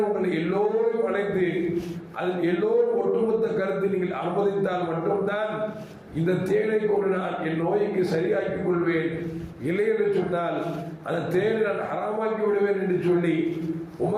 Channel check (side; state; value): both; identical; correlation 1.00